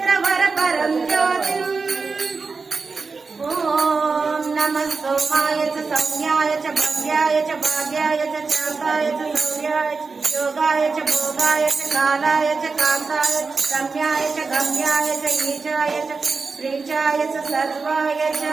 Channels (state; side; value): quieter; left; 4.5 dB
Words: ज्योतिम् ॐ नमः सोमाय च संज्ञाय च भव्याय च भाग्याय च चाकाय च सौर्याय च योगाय च भोगाय च कालाय च कान्ताय च रम्याय च गम्याय च ईशाय च प्रीचाय च सर्वाय च